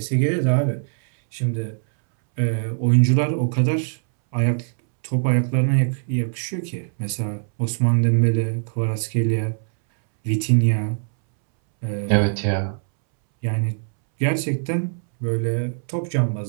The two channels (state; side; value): silent; left; 64 dB below the other